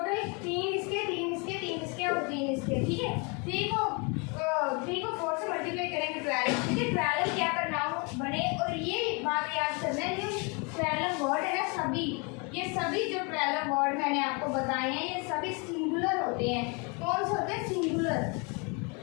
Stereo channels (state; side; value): quieter; right; 32.2 dB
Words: 3 इसके, 3 इसके, 3 इसके और 3 इसके। ठीक है, 3 को 4 से मल्टीप्लाई करेंगे 12। ठीक है, 12 क्या प्रोनाउन बने। और ये बात याद करना है, जो 12 वर्ड है ना, सभी ये सभी जो 12 वर्ड मैंने आपको बताए हैं, ये सभी सिंगुलर होते हैं। कौन से होते हैं, सिंगुलर।